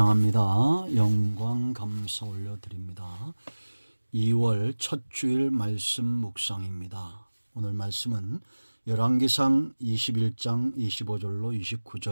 영광 감사 올려드립니다. 2월 첫 주일 말씀 묵상입니다. 오늘 말씀은 열왕기상 21장 25절로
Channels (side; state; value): both; inverted; correlation -1.00